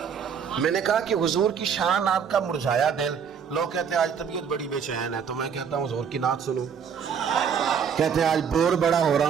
میں نے کہا کہ حضور کی شان آپ کا مرجھایا دل. لوگ کہتے ہیں آج طبیعت بڑی بے چین ہے، تو میں کہتا ہوں حضور کی نعت سنو. کہتے ہیں آج بور بڑا ہو رہا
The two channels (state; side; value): quieter; left; 7.2 dB